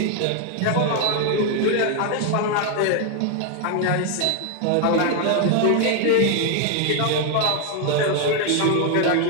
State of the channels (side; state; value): both; different; correlation 0.00